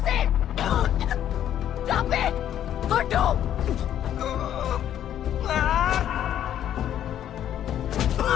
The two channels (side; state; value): right; quieter; 10.7 dB